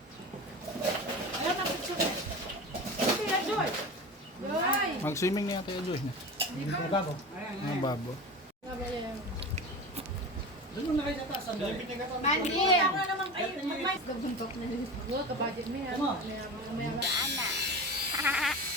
Ayaw na picture. Kaya, Joy. Joy. mag-swimming na yata yung Joy niya. Babo. Mga babo. Doon mo na kayo sa taas. Mandi. Ako na naman kayo. Mag-mais. Gabuntok na nila. Huwag ka-budget mo yan.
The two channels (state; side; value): normal; both; correlation 0.29